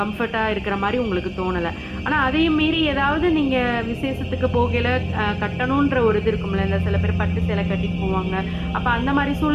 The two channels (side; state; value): both; identical; correlation 1.00